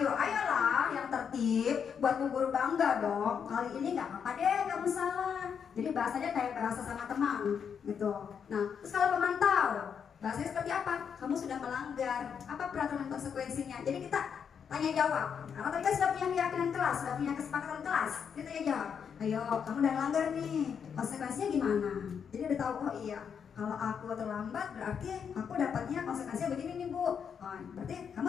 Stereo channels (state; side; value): quieter; right; 7.2 dB